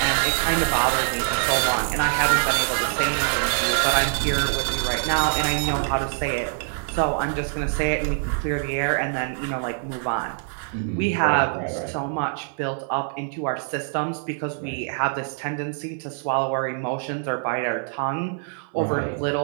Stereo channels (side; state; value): left; silent; 57 dB below the other